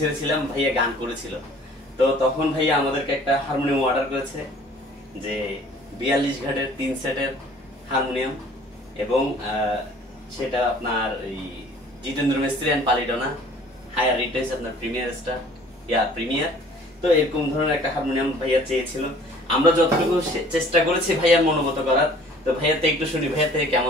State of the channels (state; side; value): normal; both; correlation 0.52